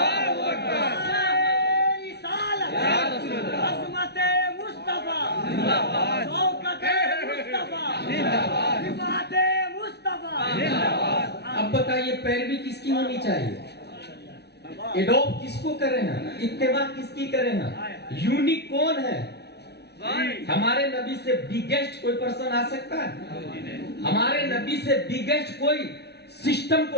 عظمت مصطفیٰ، شوکت مصطفیٰ، حمایت مصطفیٰ. اب بتائیے پیروی کس کی ہونی چاہیے؟ ایڈوپ کس کو کریں ہیں؟ اتباع کس کی کریں ہیں؟ یونیک کون ہے؟ ہمارے نبی سے بگیسٹ کوئی پرسن آ سکتا ہے؟ ہمارے نبی سے بگیسٹ کوئی سسٹم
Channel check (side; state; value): right; late; 0.49 ms